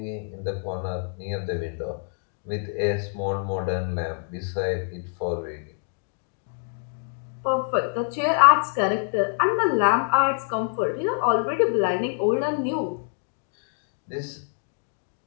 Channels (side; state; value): right; silent; 61 dB below the other